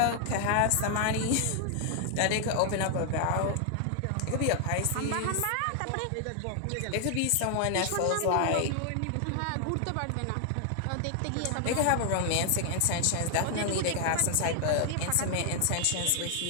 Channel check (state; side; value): different; both; correlation 0.00